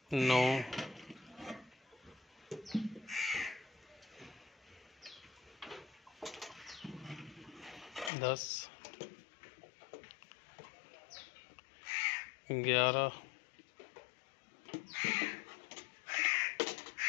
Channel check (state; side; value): drops out; right; at 8.1 s